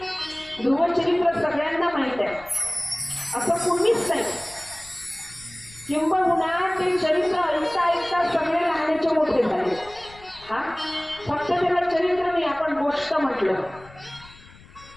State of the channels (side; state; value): left; noise; rumble, 22 dB below the sound